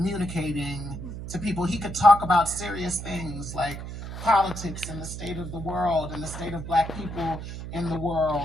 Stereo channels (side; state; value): right; noise; hum, 8 dB below the sound